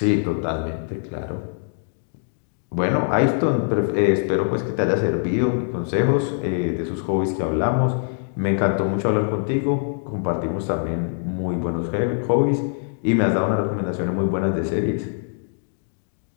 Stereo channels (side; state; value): right; silent; digital silence